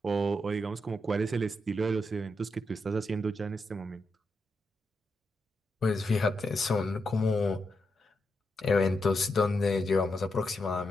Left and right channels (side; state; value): both; normal; correlation 0.84